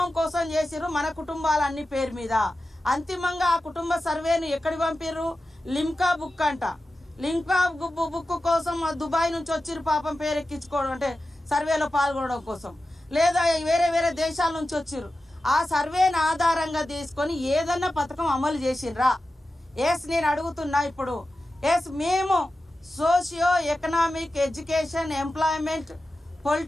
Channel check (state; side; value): normal; both; correlation 0.93